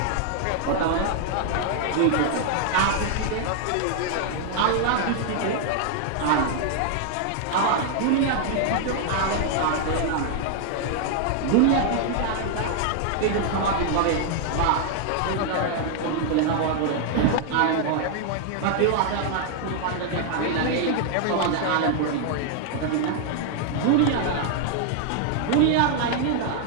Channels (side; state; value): both; different; correlation 0.00